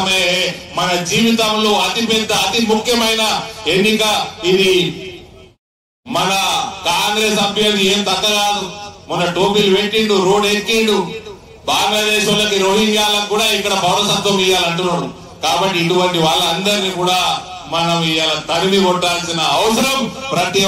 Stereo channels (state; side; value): identical; both; correlation 1.00